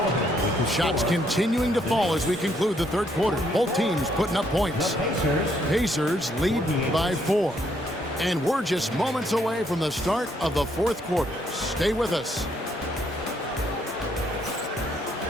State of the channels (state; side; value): normal; both; correlation 0.71